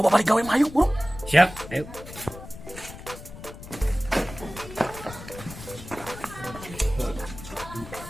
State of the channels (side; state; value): left; noise; rumble, 14 dB below the sound